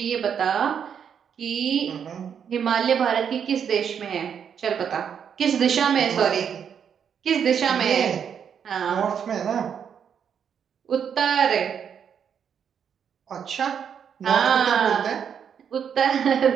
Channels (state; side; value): quieter; left; 7.8 dB